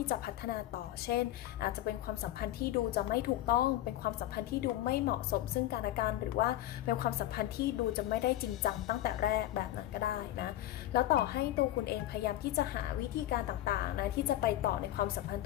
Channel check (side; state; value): right; quieter; 14.0 dB